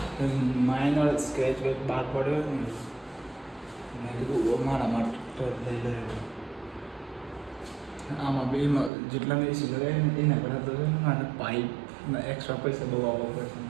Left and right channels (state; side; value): drops out; left; at 8.9 s